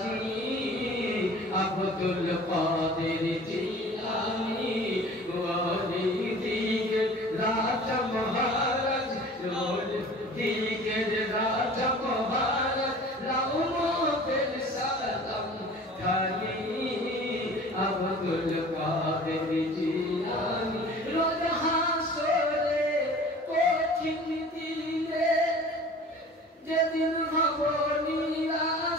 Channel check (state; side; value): normal; both; correlation 0.44